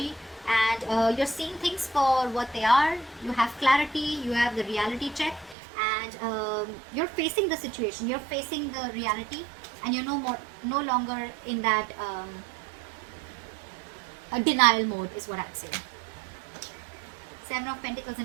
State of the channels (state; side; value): drops out; left; at 5.6 s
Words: and you're seeing things for what they are. You have clarity, you have the reality check, and you're facing the situation. You're facing the reality, and you're no longer in that denial mode is what I'd say. Seven of Pentacles